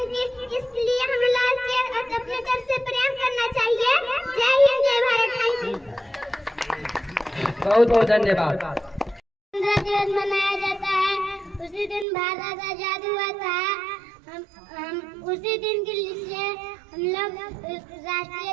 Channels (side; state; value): left; drops out; at 12.1 s